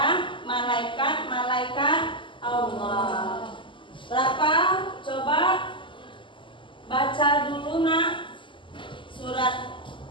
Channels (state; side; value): late; right; 0.24 ms